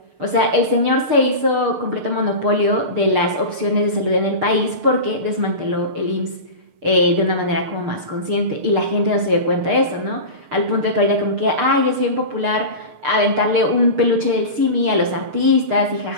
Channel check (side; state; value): left; late; 6.7 ms